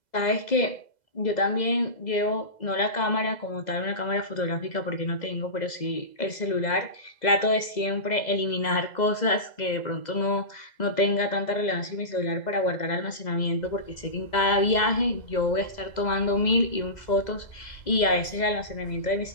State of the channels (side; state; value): right; late; 2.0 ms